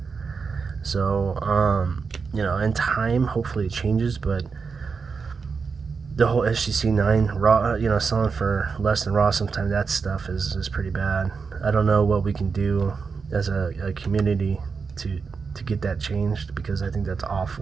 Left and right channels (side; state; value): left; quieter; 5.2 dB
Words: So, you know, in time, hopefully it changes, but the whole SGC 9 raw, you know, selling for less than raw, sometimes that stuff is pretty bad. I don't know what we can do as a community to get that changed, because I think that's